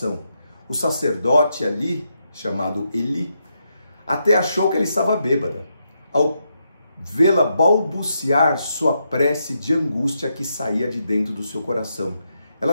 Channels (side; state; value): both; inverted; correlation -0.81